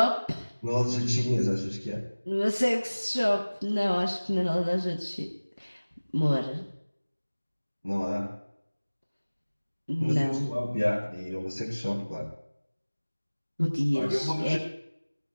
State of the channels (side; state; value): both; inverted; correlation -1.00